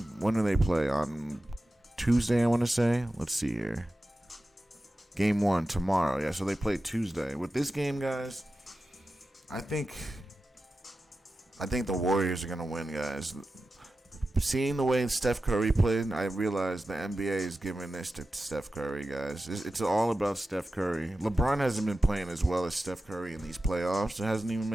when do they play? On Tuesday, I want to say. Let's see here. Game 1 tomorrow. Yeah, so they play Tuesday. With this game, guys, I think the Warriors are going to win, guys. Seeing the way Steph Curry played, I realized the NBA is giving this to Steph Curry, guys. It's all about Steph Curry. LeBron hasn't been playing as well as Steph Curry in these playoffs. It hasn't even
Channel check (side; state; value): both; normal; correlation 0.93